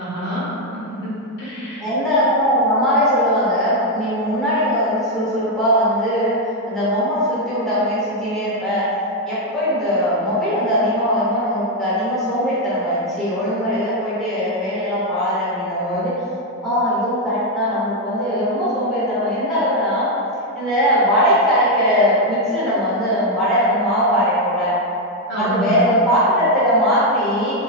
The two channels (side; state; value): both; normal; correlation 0.02